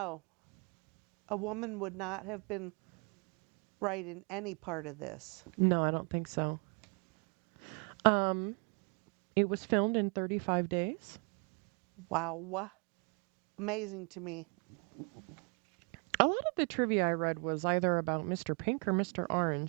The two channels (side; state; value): left; quieter; 36.3 dB